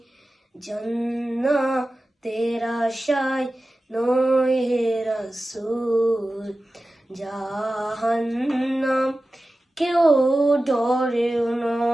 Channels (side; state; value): both; normal; correlation 0.95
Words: জান্নাতের আশায় নয় হে রাসূল, জাহান্নাম কেউ ডরে